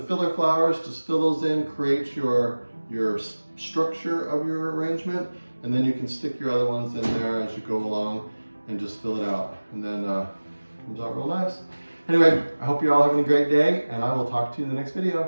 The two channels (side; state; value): both; inverted; correlation -1.00